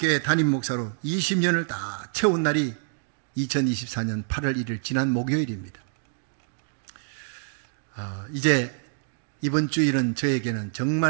담임 목사로 20년을 다 채운 날이 2024년 8월 1일 지난 목요일입니다. 이제 이번 주일은 저에게는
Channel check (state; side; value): silent; left; digital silence